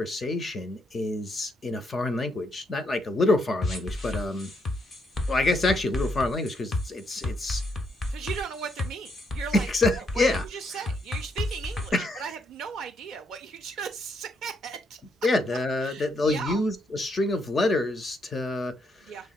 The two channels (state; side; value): normal; both; correlation 0.76